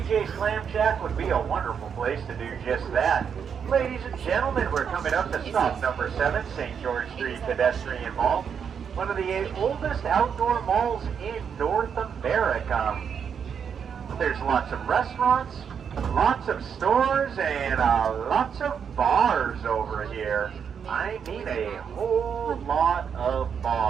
Clam Shack would be a wonderful place to do just that. Ladies and gentlemen, we're coming up to stop number 7, St. George Street Pedestrian Mall, one of the oldest outdoor malls in North America. There's lots of restaurants, lots of stores, and lots of bars over here. I mean a whole lot of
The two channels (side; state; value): left; quieter; 7.2 dB